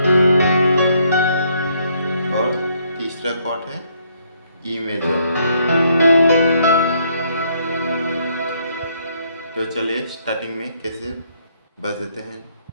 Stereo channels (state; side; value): inverted; both; correlation -0.70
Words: और तीसरा कॉर्ड है ई मेजर। तो चलिए स्टार्टिंग में कैसे बजाते हैं